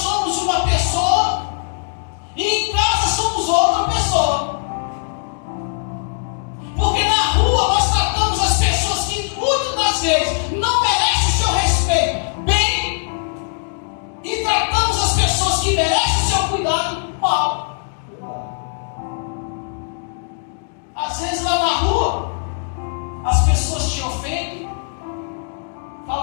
uma pessoa e em casa somos outra pessoa. Porque na rua nós tratamos as pessoas que muitas das vezes não merecem o seu respeito bem e tratamos as pessoas que merecem o seu cuidado mal. Às vezes lá na rua as pessoas te ofendem,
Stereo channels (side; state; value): right; silent; digital silence